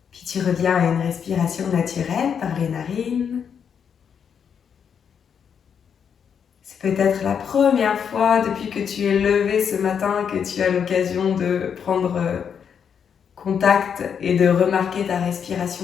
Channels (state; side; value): quieter; right; 7.4 dB